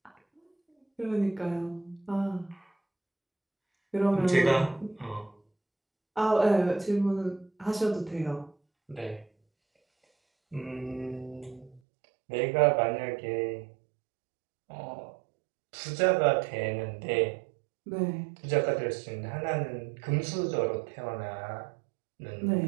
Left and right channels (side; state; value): left; drops out; at 11.8 s